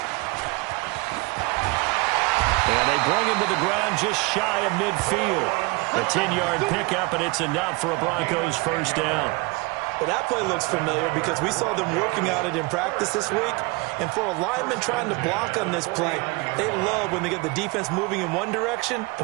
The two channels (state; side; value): quieter; left; 26.0 dB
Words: And they bring him to the ground just shy of midfield. A 10-yard pickup, and it's enough for a Broncos 1st down. Well, that play looks familiar because we saw them working on it in practice this week. And for a lineman trying to block on this play, they love when they get the defense moving in one direction.